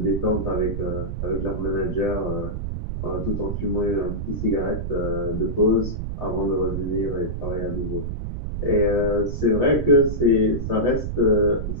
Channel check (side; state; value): right; noise; rumble, 4 dB below the sound